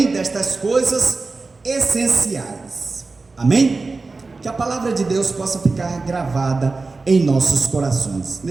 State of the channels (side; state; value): left; quieter; 3.8 dB